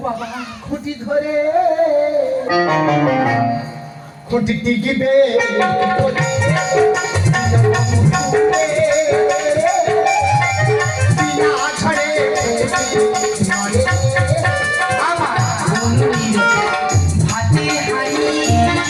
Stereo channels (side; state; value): both; identical; correlation 1.00